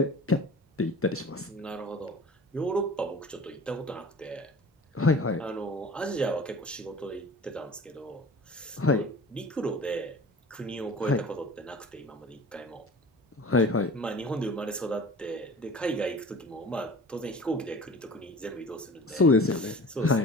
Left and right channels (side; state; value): both; normal; correlation 0.41